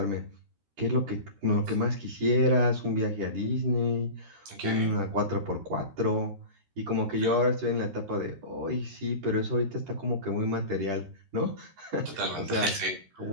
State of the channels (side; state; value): left; late; 13 ms